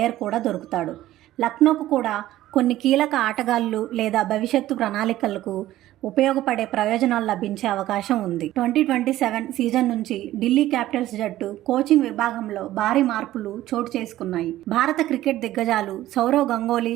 కూడా దొరుకుతాడు. లక్నోకు కూడా కొన్ని కీలక ఆటగాళ్లు లేదా భవిష్యత్తు ప్రణాళికలకు ఉపయోగపడే ప్రయోజనాలు లభించే అవకాశం ఉంది. 2027 సీజన్ నుంచి ఢిల్లీ క్యాపిటల్స్ జట్టు కోచింగ్ విభాగంలో భారీ మార్పులు చోటు చేసుకున్నాయి. భారత క్రికెట్ దిగ్గజాలు సౌరవ్ గంగూలీ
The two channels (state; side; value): quieter; left; 14.6 dB